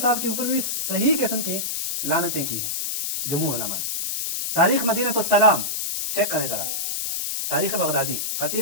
के ऊपर भी सही किस्म की लानतें की हैं जमहूर उलमा ने। तारीख मदीनतुस सलाम चेक करें जरा, तारीख बगदादी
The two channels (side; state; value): left; noise; hiss, 2 dB below the sound